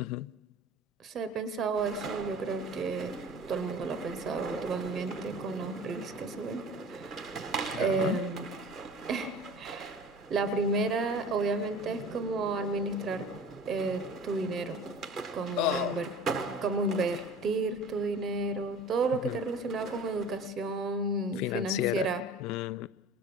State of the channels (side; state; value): both; normal; correlation 0.41